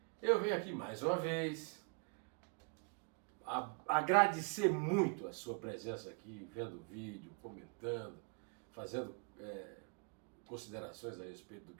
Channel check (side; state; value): left; quieter; 35.3 dB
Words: eu venho aqui mais uma vez agradecer muito a sua presença aqui, vendo o vídeo, comentando, fazendo considerações a respeito do